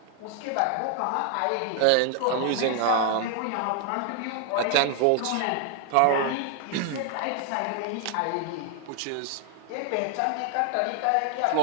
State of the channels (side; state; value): both; different; correlation 0.00